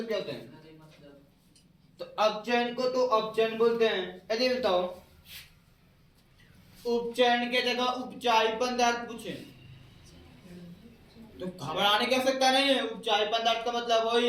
क्या होता है तो अपचयन को तो अपचयन बोलते हैं यदि बताओ उपचयन के जगह उपचायी पदार्थ पूछे तो घबराने की आवश्यकता नहीं है उपचायी पदार्थ का मतलब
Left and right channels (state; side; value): identical; both; correlation 1.00